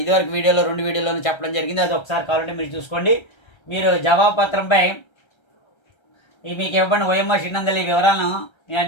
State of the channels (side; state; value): right; late; 1.3 ms